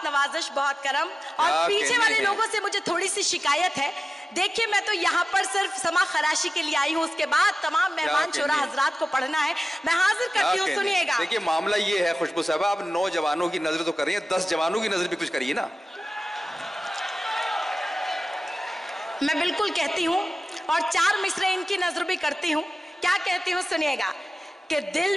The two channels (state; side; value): normal; both; correlation 0.95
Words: नवाजिश, बहुत करम। और पीछे वाले लोगों से मुझे थोड़ी सी शिकायत है। देखिए, मैं तो यहाँ पर सिर्फ समा खराशी के लिए आई हूँ, उसके बाद तमाम मेहमान शोरा हजरात को पढ़ना है। मैं हाजिर करती हूँ, सुनिएगा। देखिए मामला ये है खुशबू साहबा, आप 9 जवानों की नजर तो कर रही हैं, 10 जवानों की नजर भी कुछ करिए ना। मैं बिल्कुल कहती हूँ, और 4 मिसरे इनकी नजर भी करती हूँ। क्या कहती हूँ सुनिएगा कि